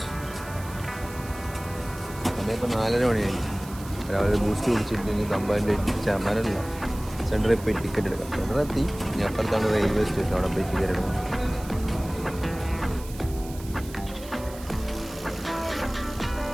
സമയം ഇപ്പോൾ 4:30 മണിയായി. രാവിലെ ബൂസ്റ്റ് കുടിച്ചിട്ട് ഇനി തമ്പാൻ്റെ ചാമാനല്ല സെൻറ്ററിൽ പോയി ടിക്കറ്റ് എടുക്കാം. സെൻറ്ററെത്തി. ഇനി അപ്പുറത്താണ് റെയിൽവേ സ്റ്റേഷൻ. അവിടെ പോയി ടിക്കറ്റ് എടുക്കാം.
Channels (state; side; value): noise; right; hiss, 17 dB below the sound